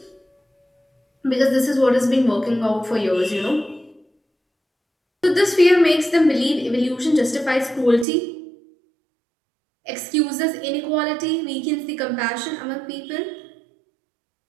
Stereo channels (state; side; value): drops out; left; at 8.1 s